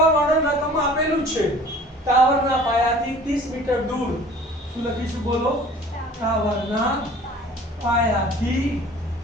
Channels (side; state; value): both; normal; correlation 0.48